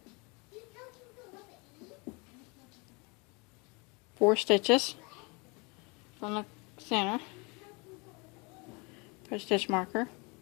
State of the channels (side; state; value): right; quieter; 29.5 dB